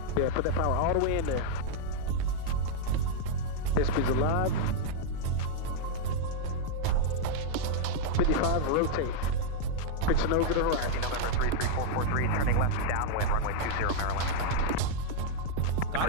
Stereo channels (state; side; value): different; both; correlation -0.01